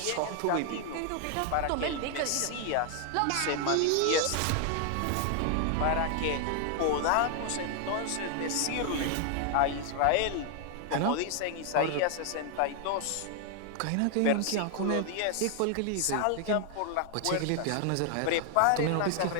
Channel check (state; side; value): different; both; correlation 0.00